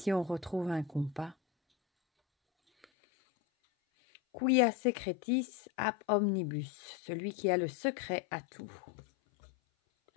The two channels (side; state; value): right; drops out; at 2.9 s